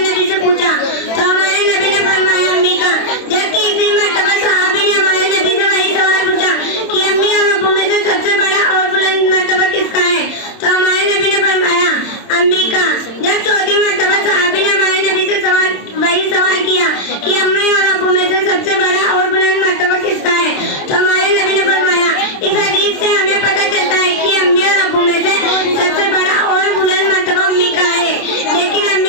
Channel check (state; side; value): late; right; 27 ms